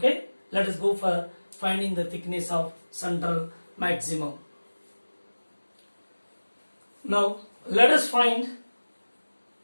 Let us go for finding the thickness of central maximum. Now let us find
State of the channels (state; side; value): inverted; both; correlation -1.00